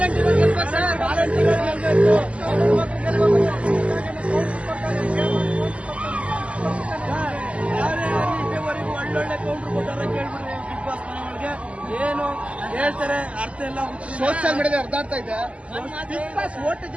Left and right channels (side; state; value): left; late; 0.061 ms